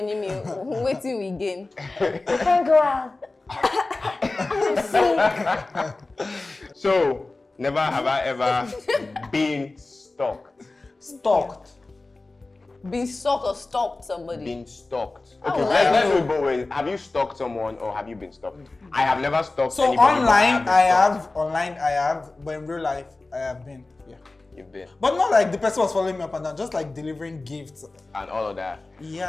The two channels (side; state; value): right; quieter; 3.2 dB